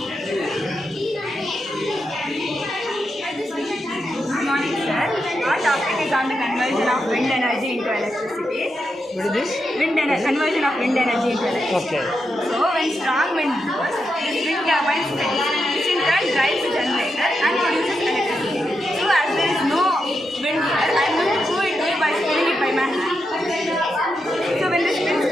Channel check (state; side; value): normal; both; correlation 0.86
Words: Good morning, sir. Our topic is on the conversion of wind energy into electricity. What is this? Conversion of wind energy into electricity. Okay. So, when strong wind blows, this wind turbine spins, which in turn drives the generator and produces electricity. So, as there is no wind here, I am going to prove it to you by spinning it by my hand. So, when this spins